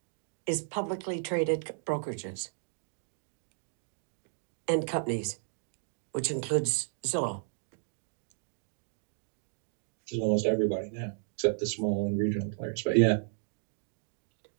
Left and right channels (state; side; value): silent; left; digital silence